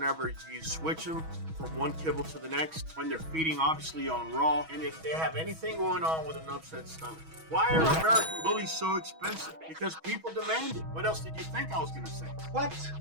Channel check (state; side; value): late; left; 6.2 ms